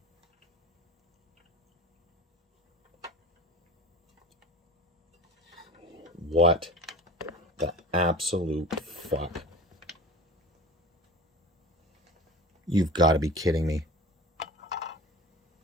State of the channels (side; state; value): both; normal; correlation 0.35